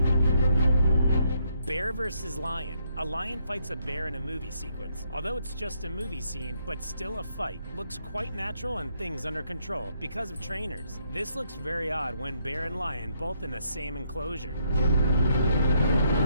Bear versus lion. A lion fights a bear in a movie sequence. Although it's just a movie scene, but still a fight. Looks quite natural and things under control because of trainers. This looks very odd when bear and lion both in the same enclosure.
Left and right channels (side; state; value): both; inverted; correlation -0.74